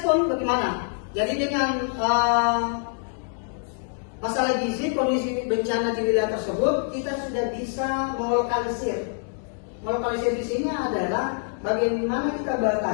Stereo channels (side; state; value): right; silent; digital silence